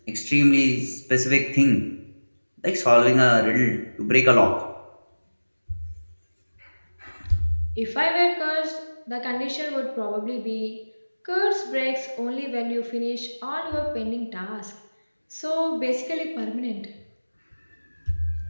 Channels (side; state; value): both; inverted; correlation -1.00